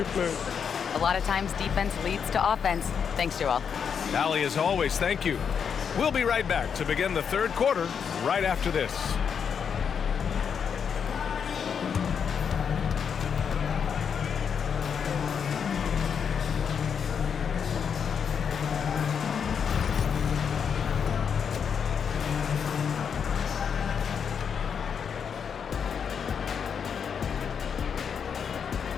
plays. A lot of times defense leads to offense. Thanks, Joel. Allie, as always, thank you. We'll be right back to begin the third quarter right after this.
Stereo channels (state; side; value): quieter; right; 7.0 dB